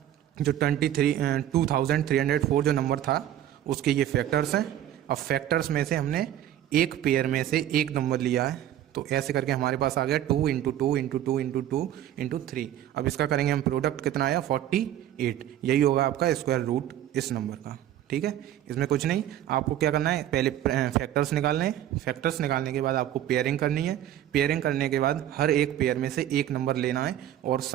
जो 2304 जो नंबर था उसके ये फैक्टर्स हैं। अब फैक्टर्स में से हमने एक पेयर में से एक नंबर लिया है, तो ऐसे करके हमारे पास आ गया 2 × 2 × 2 × 2 × 3। अब इसका करेंगे हम प्रोडक्ट, कितना आया 48। यही होगा आपका स्क्वायर रूट इस नंबर का। ठीक है, इसमें कुछ नहीं, आपको क्या करना है पहले फैक्टर्स निकालने हैं। फैक्टर्स निकालने के बाद आपको पेयरिंग करनी है। पेयरिंग करने के बाद हर एक पेयर में से एक नंबर लेना है और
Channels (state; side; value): quieter; left; 11.8 dB